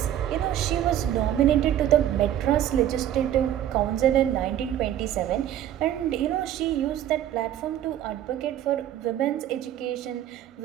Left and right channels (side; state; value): left; quieter; 11.4 dB